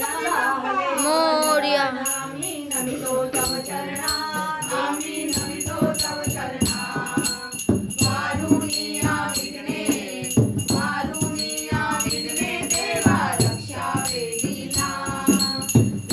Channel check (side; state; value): both; identical; correlation 1.00